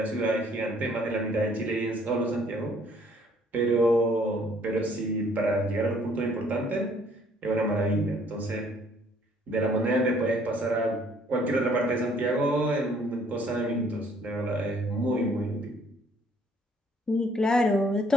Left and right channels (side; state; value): both; normal; correlation 0.61